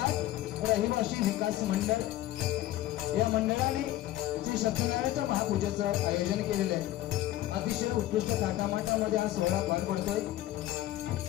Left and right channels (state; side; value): quieter; right; 14.6 dB